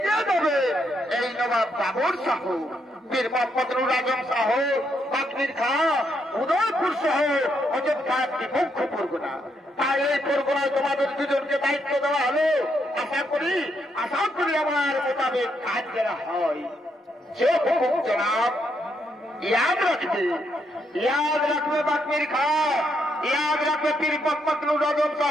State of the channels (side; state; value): both; normal; correlation 0.77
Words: দেবে এই নবাব বাবর শাহ, বীর মোহাম্মদ নুর আজম শাহ, বাকরির খাঁ, উদয়পুর সহ অযোধ্যা একটি মুখ্য পরগনা। তাই এই পরগনায় তোমাদের দুজনকে দায়িত্ব দেওয়া হলো। আশা করি আমার মোতাবেক কাজ করা হয়। যে হুকুম জনাব, याद रखबे बाकमिर खां, याद रखबे पीर मोहम्मद नुर आजम